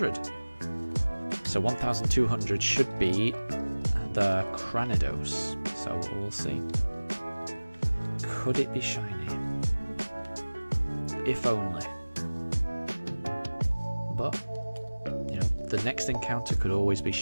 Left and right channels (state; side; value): inverted; both; correlation -1.00